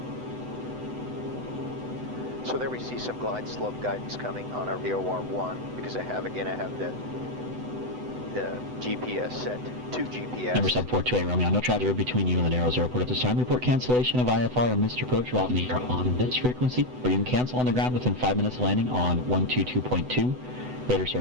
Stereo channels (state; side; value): late; left; 8.0 ms